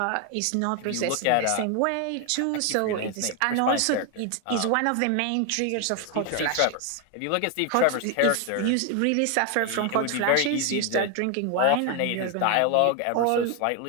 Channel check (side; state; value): both; different; correlation 0.01